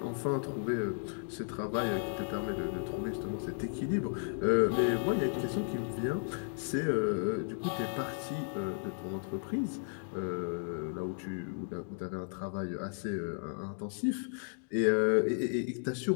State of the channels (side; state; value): right; silent; digital silence